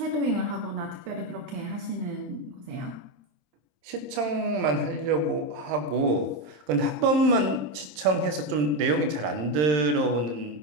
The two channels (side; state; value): left; late; 27 ms